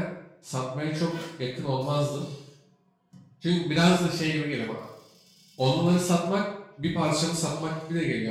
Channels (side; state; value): both; identical; correlation 1.00